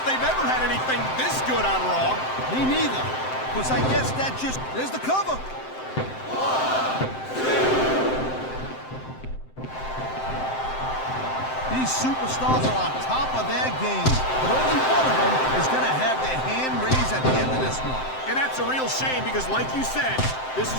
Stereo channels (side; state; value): right; late; 7.7 ms